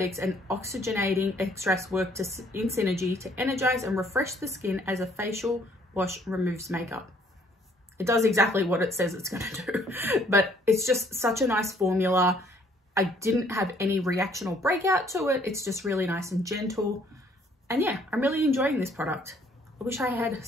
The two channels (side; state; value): both; normal; correlation 0.63